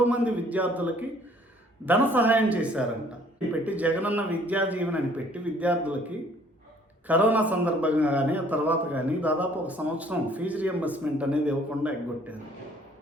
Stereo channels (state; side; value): normal; both; correlation 0.58